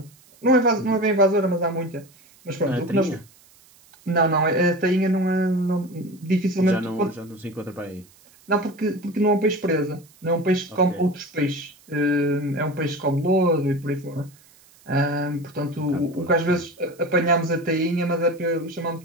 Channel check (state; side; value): noise; right; hiss, 28 dB below the sound